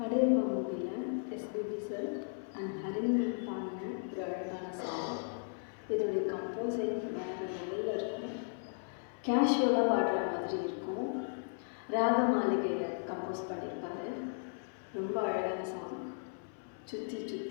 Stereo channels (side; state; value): right; silent; 54 dB below the other